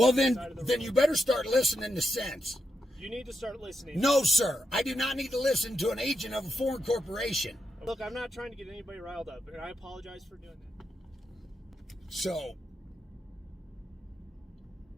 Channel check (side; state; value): both; normal; correlation 0.85